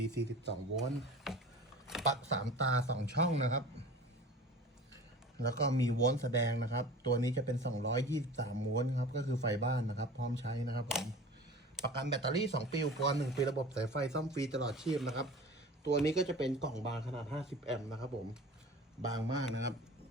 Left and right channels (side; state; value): both; normal; correlation 0.39